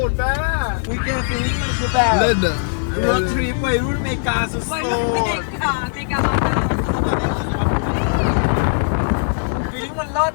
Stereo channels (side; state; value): right; silent; 66 dB below the other